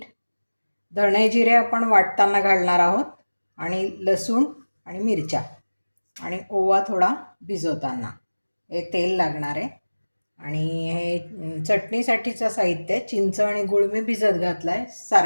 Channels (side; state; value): both; inverted; correlation -1.00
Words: धणे जिरे आपण वाटताना घालणार आहोत, आणि लसूण आणि मिरच्या आणि ओवा थोडा भिजवताना. हे तेल लागणार आहे. आणि हे चटणीसाठीचं साहित्य, चिंच आणि गूळ मी भिजत घातला आहे